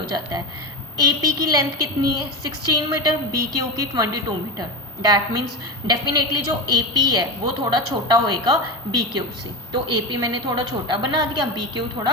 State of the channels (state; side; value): normal; both; correlation 0.23